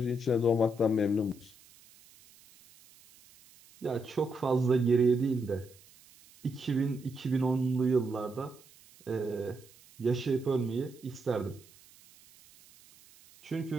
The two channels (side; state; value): right; noise; hiss, 26 dB below the sound